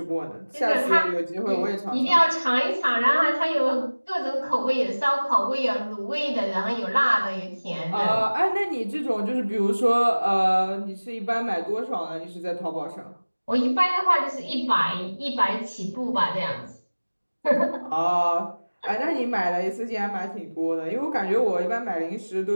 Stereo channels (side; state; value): both; inverted; correlation -1.00